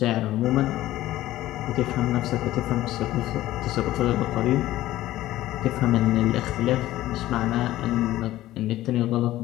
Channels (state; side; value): quieter; right; 15.2 dB